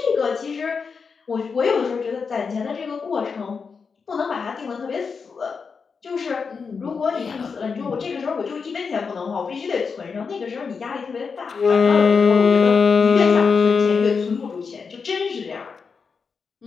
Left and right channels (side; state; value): right; quieter; 5.4 dB